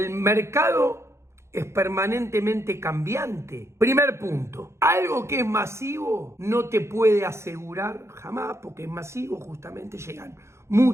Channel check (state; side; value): late; left; 0.13 ms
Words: mercado es permanentemente cambiante. Primer punto, algo que es masivo no te puede asegurar jamás, porque es masivo, justamente llegan